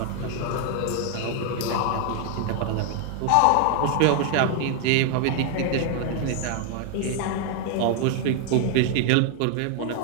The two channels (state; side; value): different; both; correlation 0.00